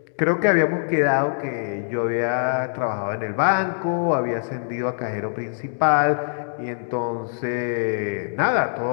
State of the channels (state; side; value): silent; right; digital silence